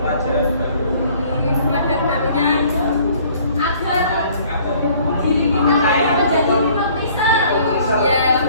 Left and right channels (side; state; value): both; inverted; correlation -0.56